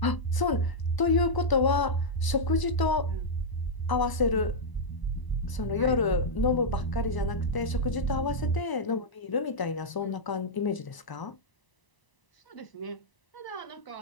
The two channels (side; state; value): right; late; 1.0 ms